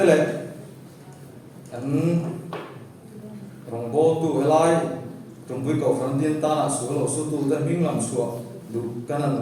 le kan rong bo tu helai trong vui cầu phần tiên ta là số lỗ số tu ta minh làm sủa đủ cái này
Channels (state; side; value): identical; both; correlation 1.00